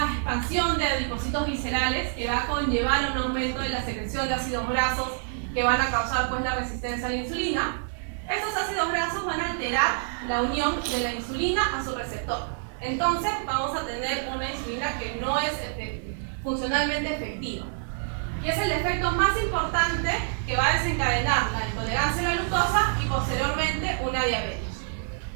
expansión de adipocitos viscerales que va a conllevar un aumento de la secreción de ácidos grasos que van a causar pues la resistencia a la insulina. Estos ácidos grasos van a alterar la unión de la insulina a su receptor. Entonces vamos a tener una insulina que no es funcionalmente efectiva. Y es el defecto más importante que va a desencadenar la intolerancia a la glucosa y posteriormente una diabetes.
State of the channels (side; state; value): left; silent; 60 dB below the other